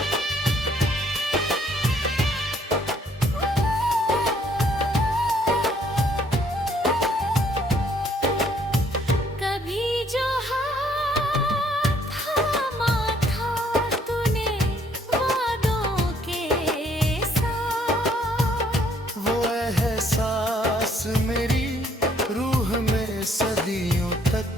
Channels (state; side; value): normal; both; correlation 0.65